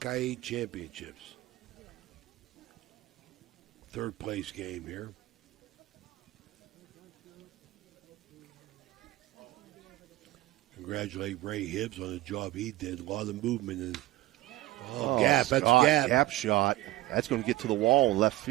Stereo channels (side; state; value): left; quieter; 17.2 dB